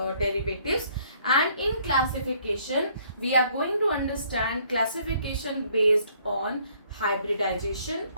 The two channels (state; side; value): inverted; both; correlation -0.62